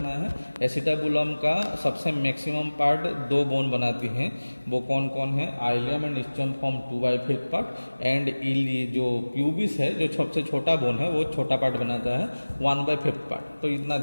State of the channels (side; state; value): both; inverted; correlation -1.00